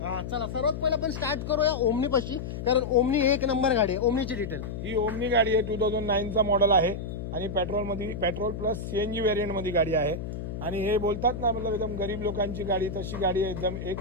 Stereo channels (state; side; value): noise; left; hum, 6 dB below the sound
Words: चला सर्वात पहिला आपण स्टार्ट करूया ओमनी पाशी, कारण ओमनी एक नंबर गाडी आहे। ओमनीची डिटेल, ही ओमनी गाडी आहे, 2009 चा मॉडेल आहे आणि पेट्रोल प्लस CNG व्हेरियंट मध्ये गाडी आहे। आणि हे बोलतात ना, मतलब एकदम गरीब लोकांची गाडी, तशी गाडी आहे, एकदम